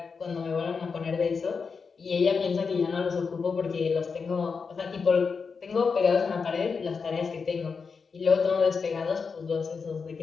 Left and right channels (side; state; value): right; quieter; 5.3 dB